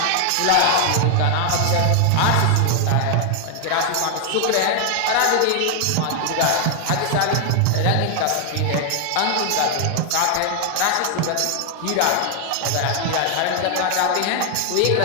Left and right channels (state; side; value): different; both; correlation 0.00